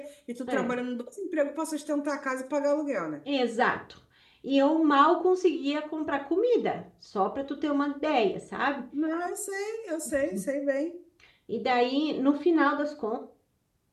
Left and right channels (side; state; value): both; identical; correlation 1.00